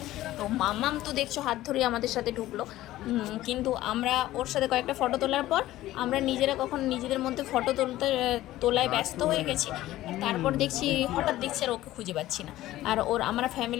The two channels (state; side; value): quieter; right; 15.4 dB